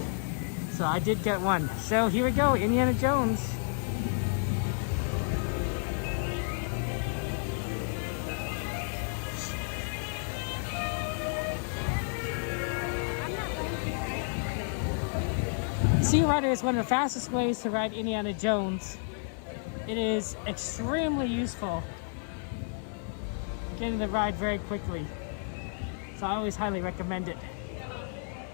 So I did get one. So here we go, Indiana Jones. Sea Rider is one of the fastest ways to ride Indiana Jones. It is extremely useful, getting the ride very quickly. So I always highly recommend it.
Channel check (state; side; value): silent; right; 57 dB below the other